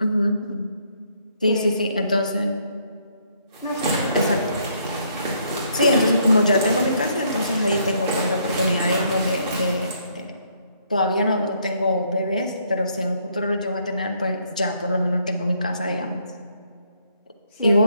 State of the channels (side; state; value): both; inverted; correlation -0.70